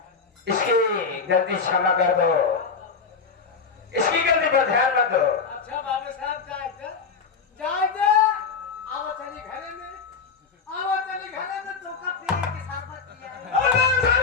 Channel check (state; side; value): quieter; right; 5.3 dB